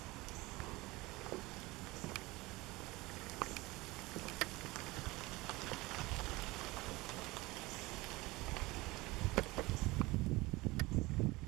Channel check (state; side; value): quieter; left; 21.5 dB